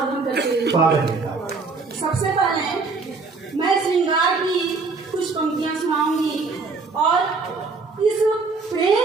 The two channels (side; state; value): left; quieter; 4.3 dB